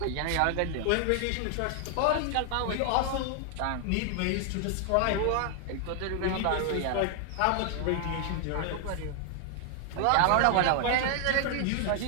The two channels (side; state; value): both; different; correlation 0.00